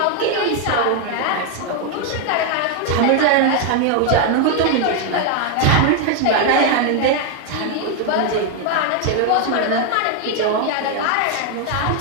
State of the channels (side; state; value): both; different; correlation 0.01